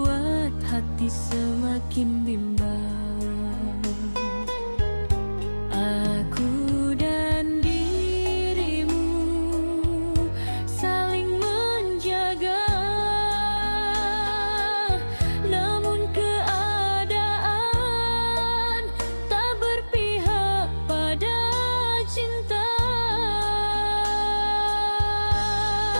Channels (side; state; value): both; inverted; correlation -1.00